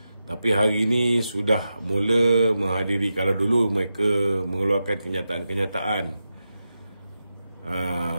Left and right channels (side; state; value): both; inverted; correlation -0.90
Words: tapi hari ini sudah mula menghadiri. Kalau dulu mereka mengeluarkan kenyataan-kenyataan